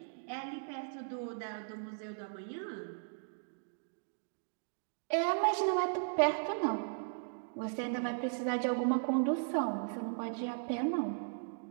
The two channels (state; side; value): silent; left; digital silence